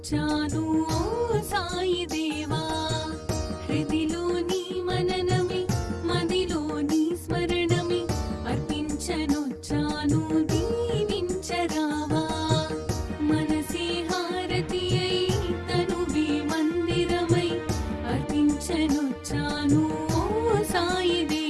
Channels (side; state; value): both; identical; correlation 1.00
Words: అర్పించనొచ్చాను ఓ సాయి దేవా. హృదిలోని మననమే మదిలోని స్మరణమే అర్పించనొచ్చాను దీవించరావా. మనసే హారతి అయి తనువే మందిరమై అర్పించనొచ్చాను ఓ సాయి